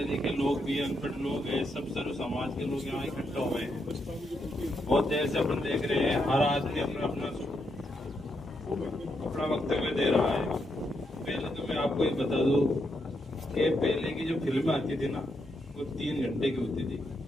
लिखे लोग भी, अनपढ़ लोग हैं, सब सर्व समाज के लोग यहाँ इकट्ठा हुए हैं। बहुत देर से अपन देख रहे हैं, हर आदमी अपना वक्तव्य दे रहा है। पहले तो मैं आपको ये बता दूं कि पहले की जो फिल्में आती थी ना, वो 3 घंटे की होती थी।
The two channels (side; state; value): both; normal; correlation 0.80